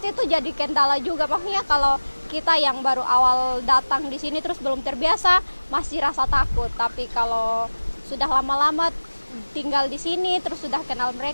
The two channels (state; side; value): inverted; both; correlation -1.00